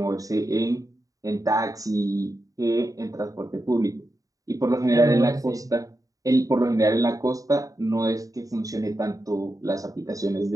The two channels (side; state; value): left; late; 0.16 ms